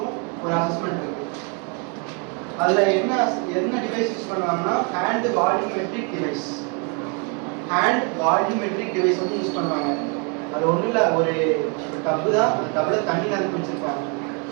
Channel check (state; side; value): quieter; left; 35.0 dB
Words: ஒரு அசஸ்மெண்ட் இருக்கு. அதுல என்ன டிவைஸ் யூஸ் பண்ணுவாங்கன்னா hand volumetric device. Hand volumetric device வந்து யூஸ் பண்ணுவாங்க. அது ஒன்றும் இல்லை, ஒரு டப்பு தான், அந்த டப்பில் தண்ணி நிரப்பி வச்சிருப்பாங்க,